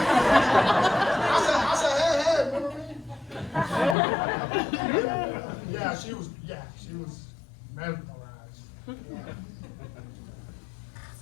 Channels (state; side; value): drops out; right; at 4.0 s